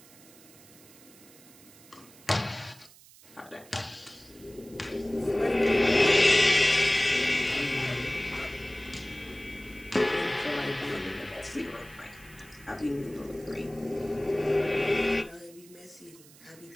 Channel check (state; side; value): noise; right; hiss, 23 dB below the sound